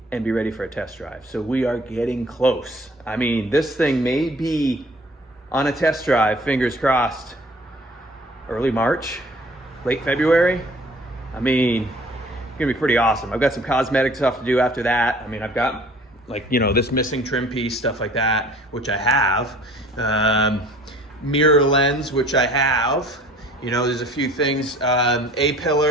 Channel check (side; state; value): both; normal; correlation 0.51